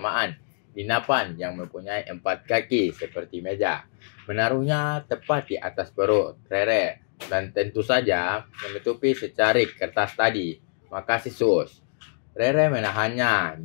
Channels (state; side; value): silent; right; 61 dB below the other